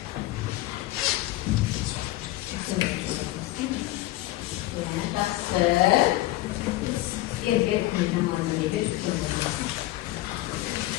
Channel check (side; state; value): right; quieter; 16.9 dB